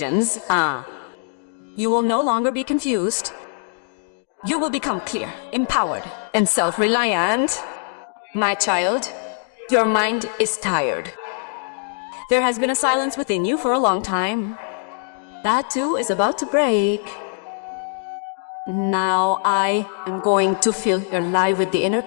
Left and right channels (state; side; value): silent; right; 64 dB below the other